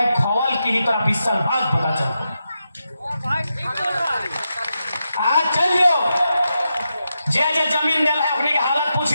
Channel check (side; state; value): both; inverted; correlation -0.87